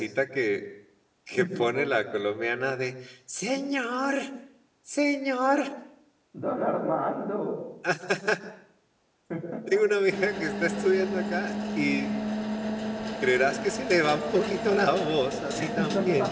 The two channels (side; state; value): both; identical; correlation 1.00